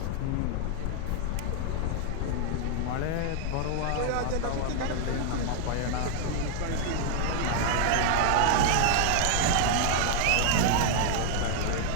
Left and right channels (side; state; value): both; different; correlation 0.00